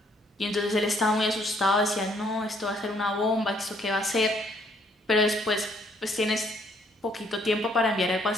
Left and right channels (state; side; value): normal; both; correlation 0.66